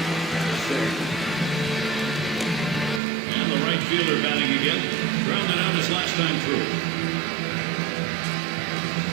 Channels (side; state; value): left; drops out; at 3.0 s